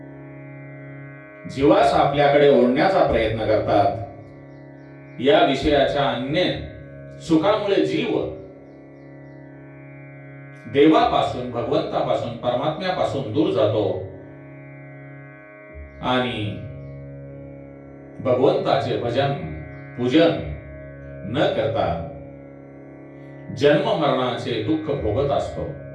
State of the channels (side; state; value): both; identical; correlation 1.00